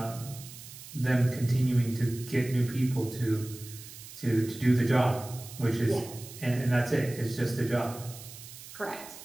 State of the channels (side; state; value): right; noise; hiss, 15 dB below the sound